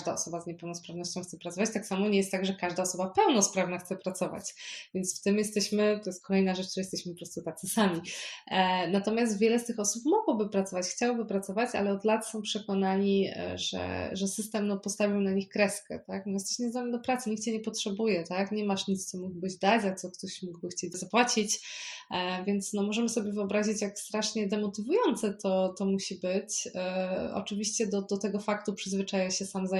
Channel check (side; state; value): both; identical; correlation 1.00